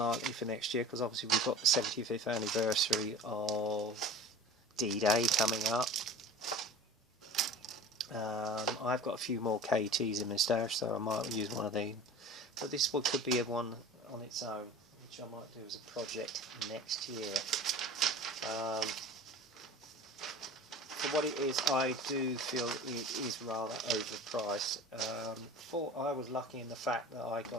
for next year, because obviously we've got the 75th anniversary of D-Day coming up. I've got a few more KTs in my stash, so I might use one of these. But this one could be one on its own, which I might do as a project next year. For what it is, I do feel it is rather overpriced. I was lucky in the fact that I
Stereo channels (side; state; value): both; normal; correlation 0.39